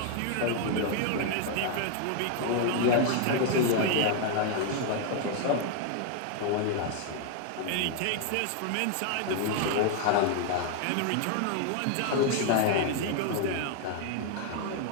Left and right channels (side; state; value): both; different; correlation 0.00